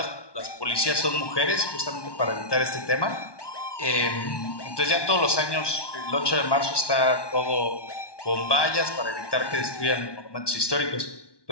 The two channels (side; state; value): right; late; 1.2 ms